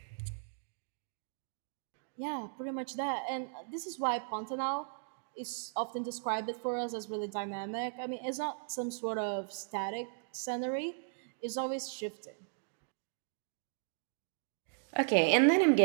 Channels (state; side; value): silent; left; digital silence